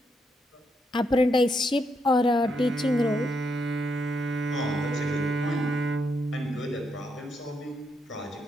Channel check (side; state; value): both; normal; correlation 0.79